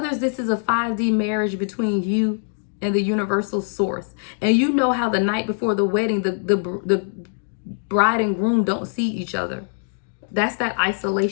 this is a 5D marriage between you and the universal source. And you know how the night before the wedding, the bride and groom don't see each other. That's that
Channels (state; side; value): silent; right; digital silence